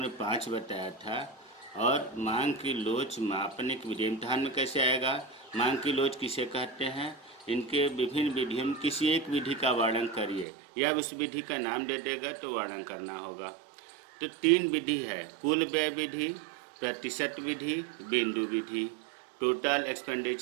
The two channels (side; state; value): left; drops out; at 10.5 s